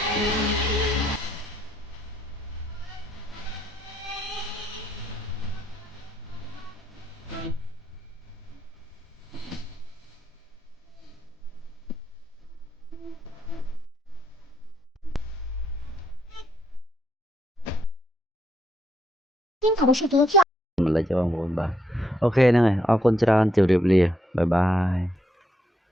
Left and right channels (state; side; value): normal; both; correlation 0.76